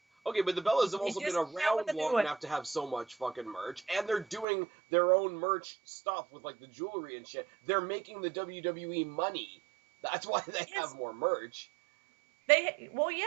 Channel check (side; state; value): left; drops out; at 4.5 s